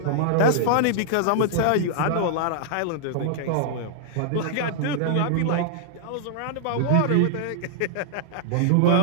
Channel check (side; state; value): both; different; correlation -0.01